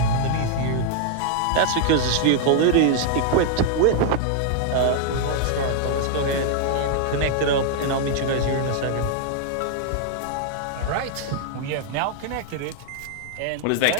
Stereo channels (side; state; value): both; different; correlation -0.01